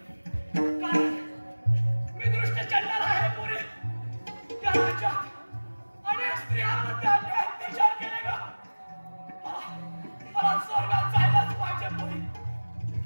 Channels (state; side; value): inverted; both; correlation -1.00